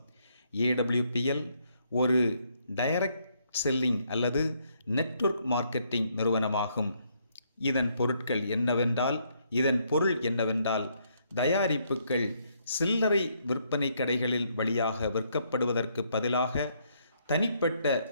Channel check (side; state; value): both; inverted; correlation -0.72